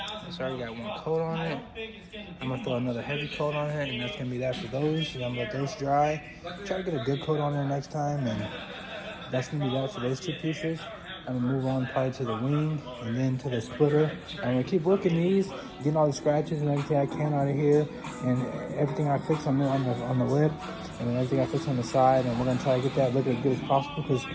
it's already got one coat on it. I'm gonna throw another heavy coat on it, and that's gonna be that for those. And I'm gonna let those dry. Try to get a good coat on there next time, and that's gonna be that for those two pieces. I'm gonna move on probably to the wing and then to the splitter. I'm gonna keep working these, getting all the scratches and everything I can out of here, and everything I fix on the lip, and then everything I fix on the side. And we're gonna try to get that look as good as possible, because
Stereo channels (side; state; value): both; identical; correlation 1.00